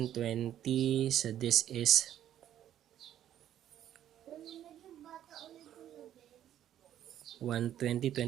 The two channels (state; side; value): quieter; left; 11.2 dB